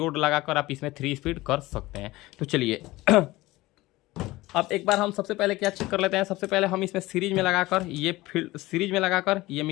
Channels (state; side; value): quieter; right; 19.1 dB